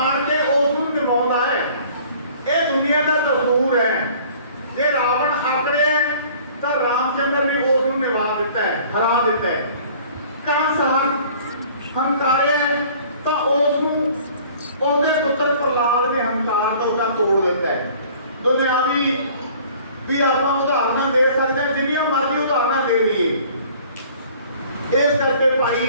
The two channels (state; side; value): inverted; both; correlation -0.51